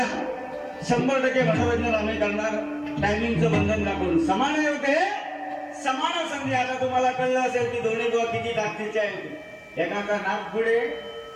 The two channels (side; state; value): both; identical; correlation 1.00